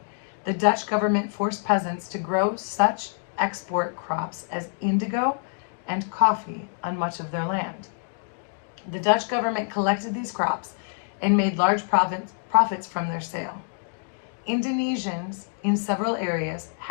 the Dutch government forced peasants to grow such export crops as indigo and coffee on much of their land. The Dutch government collected these crops and made large profits from their sale. Indonesians in several areas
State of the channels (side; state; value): right; silent; 58 dB below the other